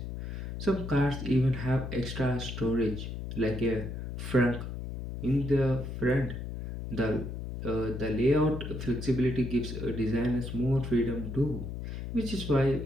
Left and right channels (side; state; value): left; noise; hum, 6 dB below the sound